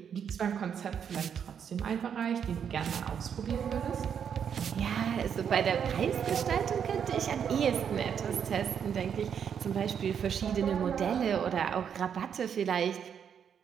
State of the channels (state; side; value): quieter; left; 7.8 dB